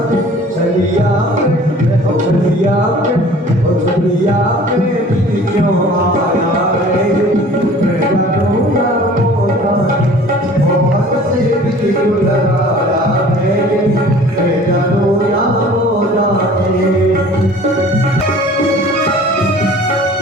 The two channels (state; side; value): normal; both; correlation 0.48